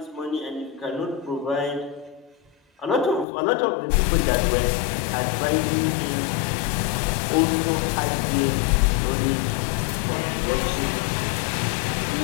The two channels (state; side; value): drops out; right; at 3.2 s